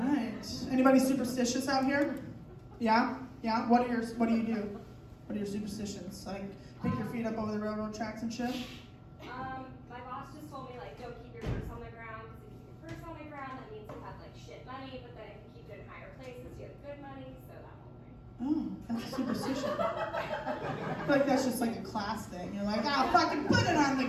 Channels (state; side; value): identical; both; correlation 1.00